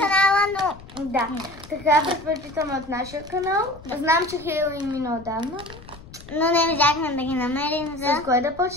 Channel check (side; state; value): left; noise; rumble, 19 dB below the sound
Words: но... Да, така предпочитаме от нашия канал. Знам, че Хейло мина отдавна. Но не взяхме да ги намерим за... С кое да